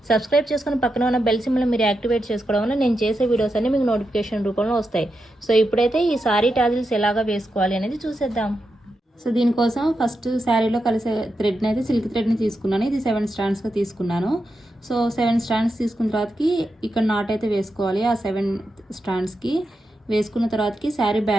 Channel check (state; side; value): normal; both; correlation 0.87